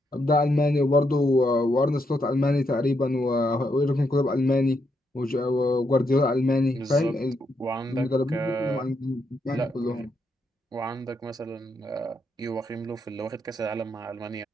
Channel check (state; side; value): normal; both; correlation 0.79